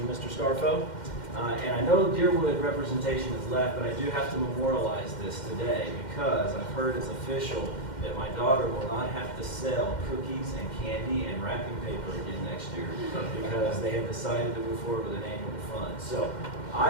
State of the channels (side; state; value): right; late; 2.1 ms